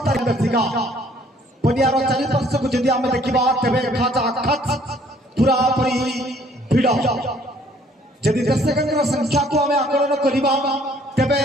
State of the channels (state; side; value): normal; both; correlation 0.60